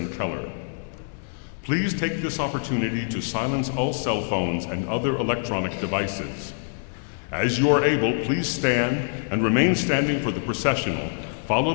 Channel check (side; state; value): right; silent; digital silence